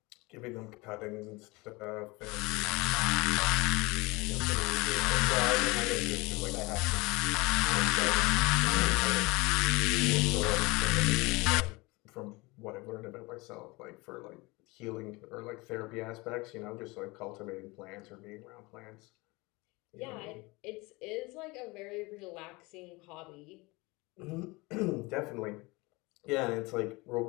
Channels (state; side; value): quieter; right; 24.2 dB